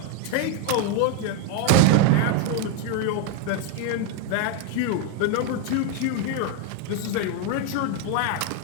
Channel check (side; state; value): both; different; correlation 0.01